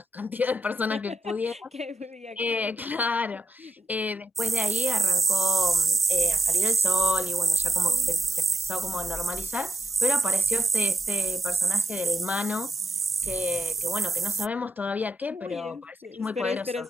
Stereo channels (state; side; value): normal; both; correlation 0.85